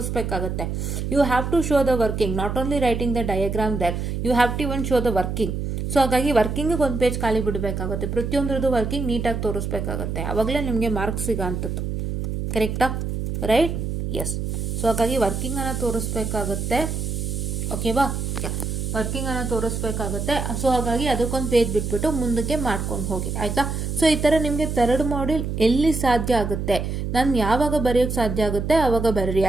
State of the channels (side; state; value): right; noise; hum, 3 dB below the sound